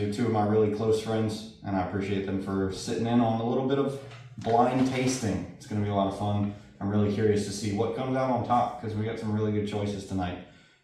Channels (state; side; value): identical; both; correlation 1.00